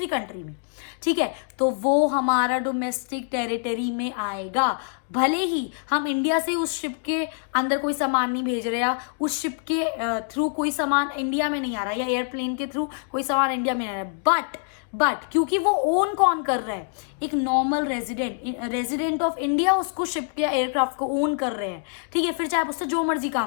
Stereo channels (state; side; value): silent; right; 61 dB below the other